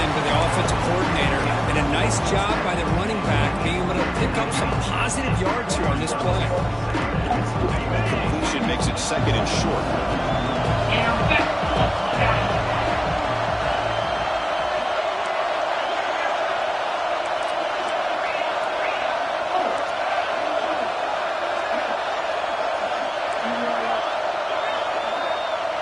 into the offensive coordinator, and a nice job by the running back being able to pick up some positive yards here on this play. Completion makes it 2nd and short.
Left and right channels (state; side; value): identical; both; correlation 1.00